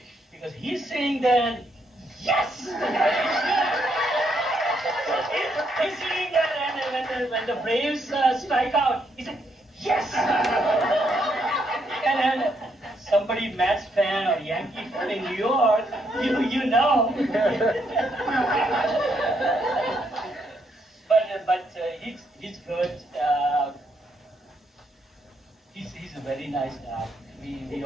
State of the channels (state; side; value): normal; both; correlation 0.75